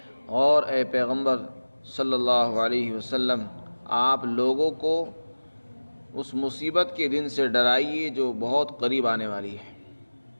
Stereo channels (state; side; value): inverted; both; correlation -1.00